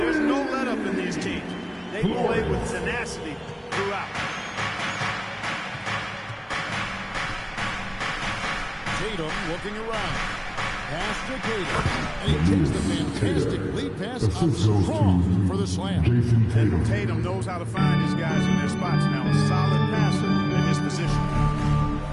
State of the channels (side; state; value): both; identical; correlation 1.00